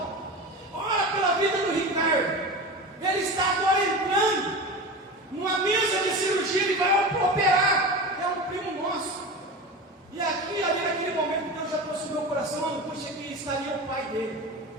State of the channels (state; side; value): normal; both; correlation 0.28